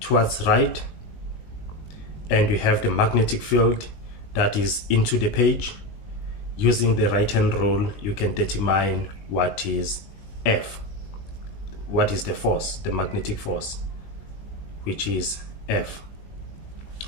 right, and you have the magnetic field that is into the page, using the right hand rule you can determine what is F, what is the force, the magnetic force, which is F.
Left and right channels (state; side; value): late; right; 19 ms